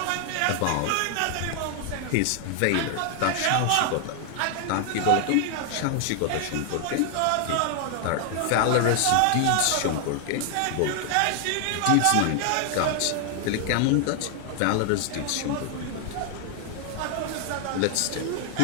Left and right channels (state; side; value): different; both; correlation 0.00